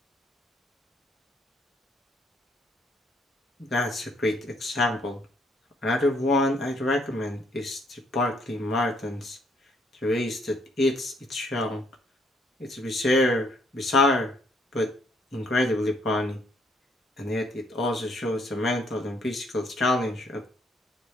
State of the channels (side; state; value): both; normal; correlation 0.68